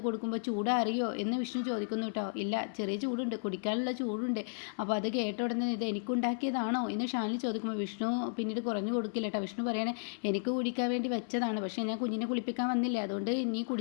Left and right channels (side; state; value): right; silent; 55 dB below the other